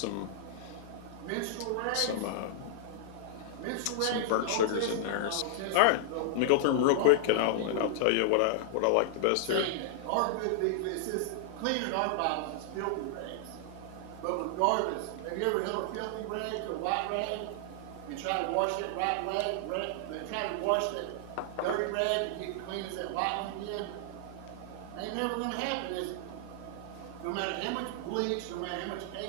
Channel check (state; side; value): different; both; correlation -0.01